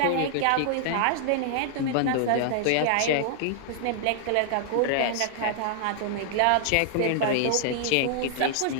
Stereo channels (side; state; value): both; different; correlation -0.01